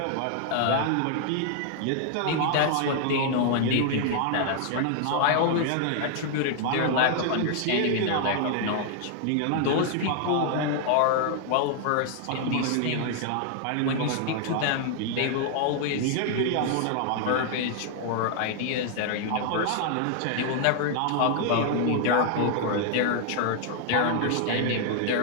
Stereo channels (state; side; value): different; both; correlation 0.00